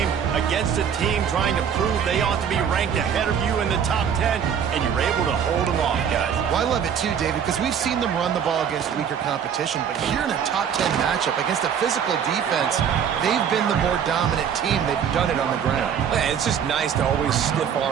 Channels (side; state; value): left; quieter; 8.0 dB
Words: against a team trying to prove they ought to be ranked ahead of you in the top 10, and you're able to hold them off, guys. Well, I love it too, David, because we've seen them run the ball against weaker competition, but here in a top 10 matchup against a physical defense, they've been the more dominant team. They've done it on the ground. Man, it's just nice to always